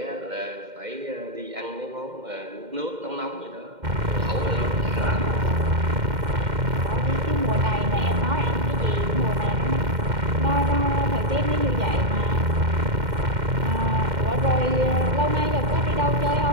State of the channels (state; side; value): late; left; 2.1 ms